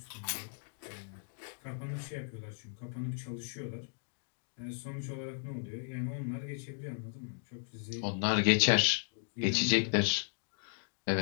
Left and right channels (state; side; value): silent; right; digital silence